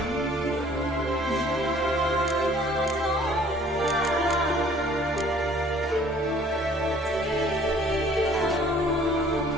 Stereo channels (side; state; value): both; normal; correlation 0.55